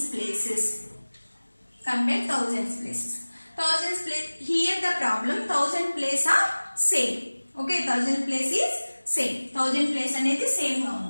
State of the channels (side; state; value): both; inverted; correlation -1.00